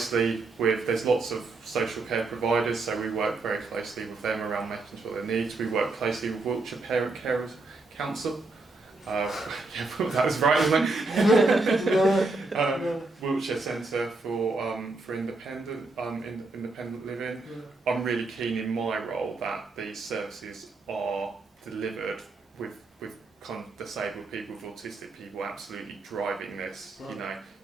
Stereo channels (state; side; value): quieter; left; 3.4 dB